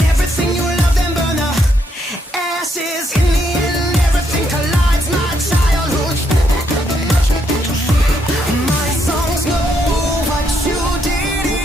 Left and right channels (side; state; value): both; normal; correlation 0.75